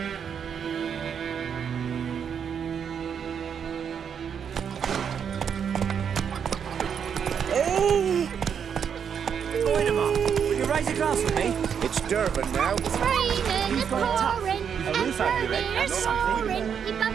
Wait a moment. Will you raise a glass with me? It's Durban now. It's raining, it's pouring, A roof over your head, and that's something. roaring. He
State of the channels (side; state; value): left; quieter; 7.5 dB